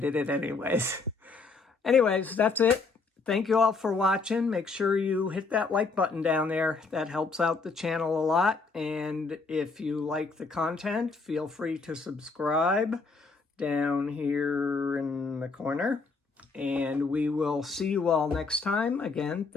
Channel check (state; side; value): quieter; right; 4.2 dB